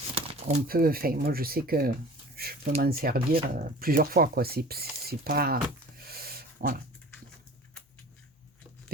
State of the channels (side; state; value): both; normal; correlation 0.43